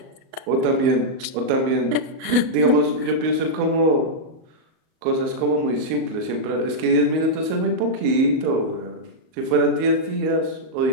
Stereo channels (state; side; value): late; left; 38 ms